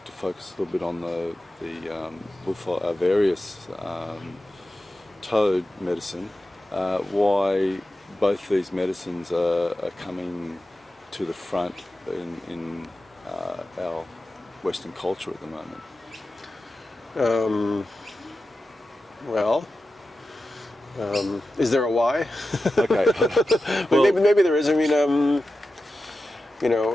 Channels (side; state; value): both; normal; correlation 0.92